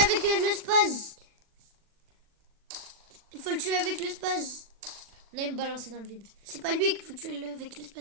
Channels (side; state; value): left; late; 40 ms